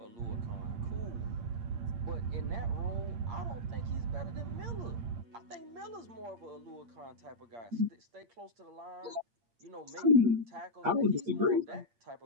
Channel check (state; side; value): late; left; 8.6 ms